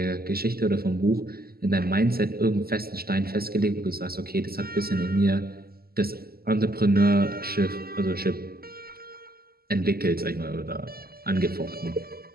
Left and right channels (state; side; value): late; left; 0.44 ms